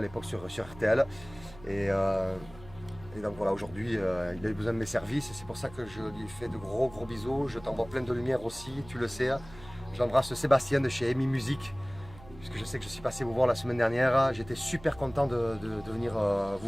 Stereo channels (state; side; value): noise; right; hum, 19 dB below the sound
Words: l'époque sur RTL. Et donc voilà, aujourd'hui, il a eu besoin de mes services et c'est pour ça que je lui fais de gros bisous. Je t'envoie plein de lumière aussi, tu le sais. J'embrasse Sébastien de chez Amy Music, puisque je sais que je suis passé vous voir la semaine dernière. J'étais super content de venir